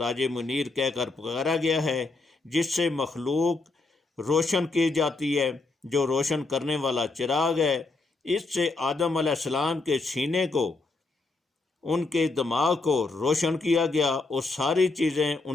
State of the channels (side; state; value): right; quieter; 3.5 dB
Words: منیر کہہ کر پکارا گیا ہے، جس سے مخلوق روشن کی جاتی ہے، جو روشن کرنے والا چراغ ہے۔ اس سے آدم علیہ السلام کے سینے کو، ان کے دماغ کو روشن کیا گیا اور ساری چیزیں